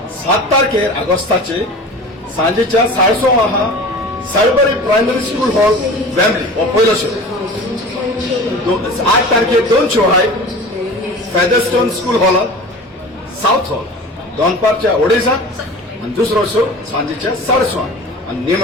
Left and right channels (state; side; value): normal; both; correlation 0.37